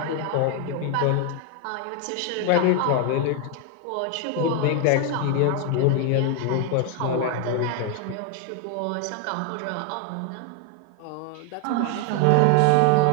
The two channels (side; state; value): both; different; correlation 0.01